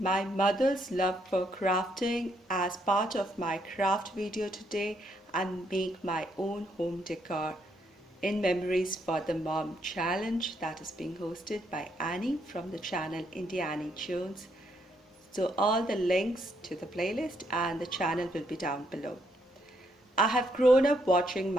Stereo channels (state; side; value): normal; both; correlation 0.74